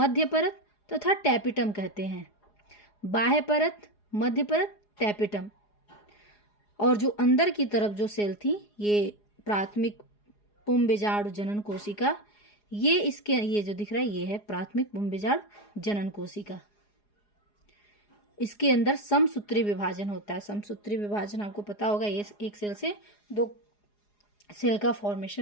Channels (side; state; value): right; late; 4.8 ms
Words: परत तथा टैपिटम कहते हैं। बाह्य परत, मध्य परत, टैपिटम। और जो अंदर की तरफ जो सेल थी ये प्राथमिक पुंबीजाणु जनन कोशिका, ये जो दिख रहा है ये है प्राथमिक पुंबीजाणु जनन कोशिका। इसके अंदर समसूत्री विभाजन होता है। समसूत्री विभाजन आपको पता होगा, ये एक सेल से 2 सेल का